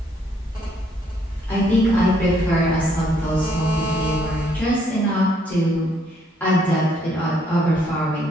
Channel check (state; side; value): normal; both; correlation 0.69